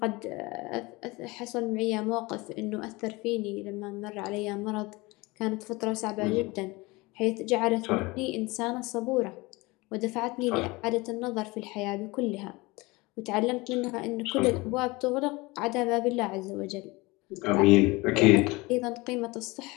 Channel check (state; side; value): quieter; right; 23.4 dB